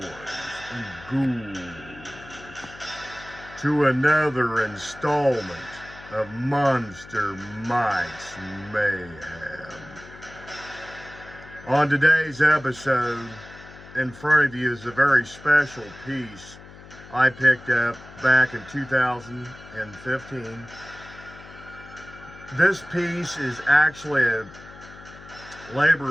and ghouls, to another installment of Monster Mike's Mayhem. On today's episode, in front of you is a very special piece I picked up back in 2015. This piece is actually a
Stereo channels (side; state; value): left; noise; hum, 19 dB below the sound